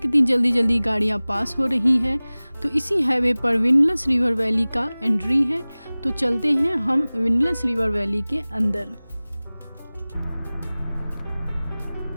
कितनी जल्दी जल्दी गाड़ियाँ पास हो रही हैं। तो इसी हाईवे पर विंडलेस रिवर वैली का एंट्री है। तो चलते हैं हम विंडलेस रिवर वैली के अंदर।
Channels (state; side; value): inverted; both; correlation -0.99